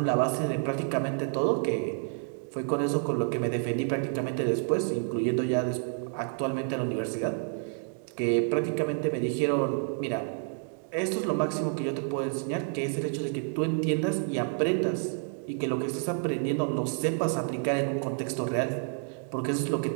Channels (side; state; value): left; silent; 58 dB below the other